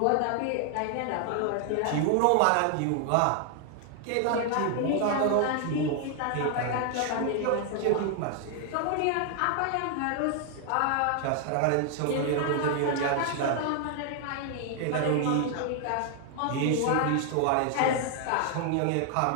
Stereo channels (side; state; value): both; different; correlation 0.00